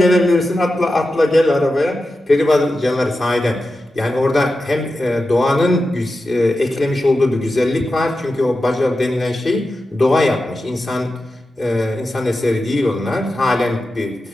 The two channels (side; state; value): both; normal; correlation 0.91